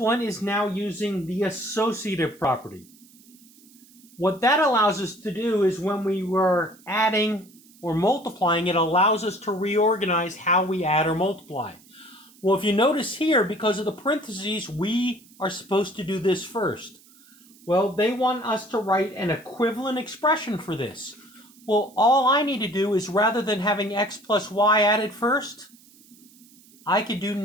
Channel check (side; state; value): right; noise; hiss, 26 dB below the sound